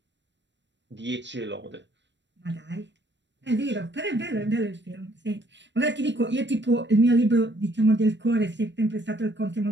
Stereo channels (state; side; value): late; left; 0.52 ms